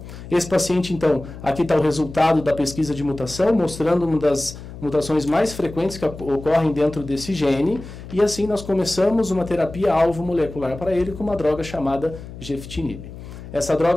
Esse paciente, então, aqui está o resultado da pesquisa de mutação, mostrando uma das mutações mais frequentes que ocorrem dentro desse gene, e assim nós começamos uma terapia alvo molecular para ele com uma droga chamada gefitinib. Essa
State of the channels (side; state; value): left; noise; hum, 13 dB below the sound